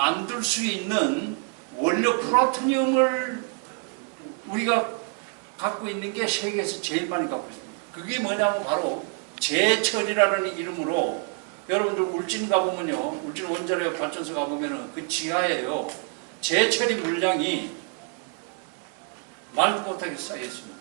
수 있는 원료 플루토늄을 우리가 갖고 있는 게 세계에서 제일 많이 갖고 있습니다. 그게 뭐냐면 바로 제철이라는 이름으로 여러분들 울진 가보면요, 울진 원자력 발전소 가보면은 그 지하에요 제철이 물량이 말도 못하게 쌓여 있습니다.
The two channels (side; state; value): left; quieter; 37.9 dB